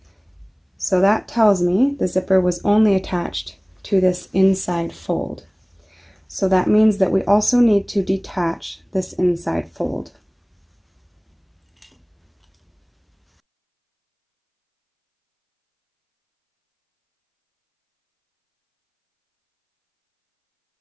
So that tells me the zipper was only attached to this inside fold. So that means that we also need to detach this inside fold.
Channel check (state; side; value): identical; both; correlation 1.00